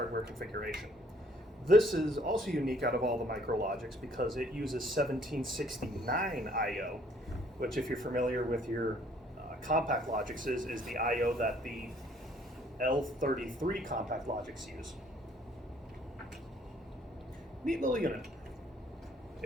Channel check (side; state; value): both; normal; correlation 0.62